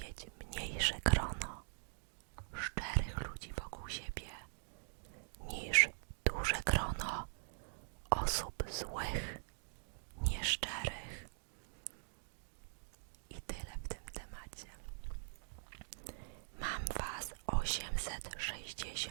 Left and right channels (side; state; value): left; silent; digital silence